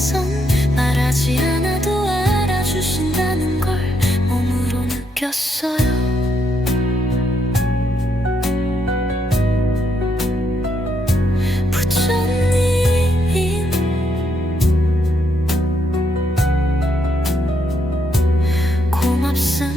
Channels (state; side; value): normal; both; correlation 0.77